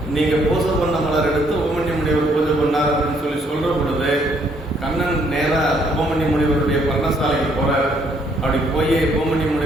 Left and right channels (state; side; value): normal; both; correlation 0.68